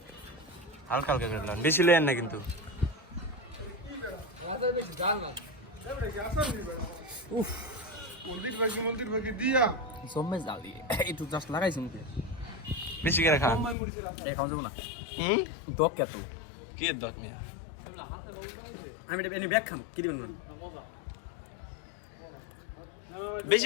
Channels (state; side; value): drops out; right; at 13.8 s